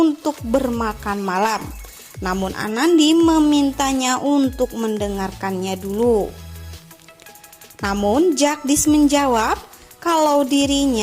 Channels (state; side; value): identical; both; correlation 1.00